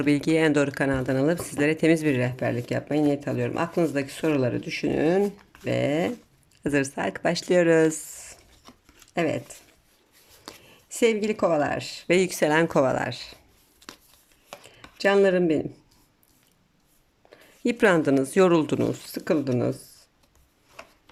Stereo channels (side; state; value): both; identical; correlation 1.00